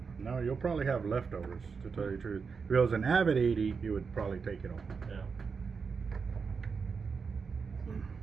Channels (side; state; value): left; quieter; 5.4 dB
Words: No, you'll probably have leftovers, to tell you the truth. If it was an Avet 80, you would probably take it all. Yeah.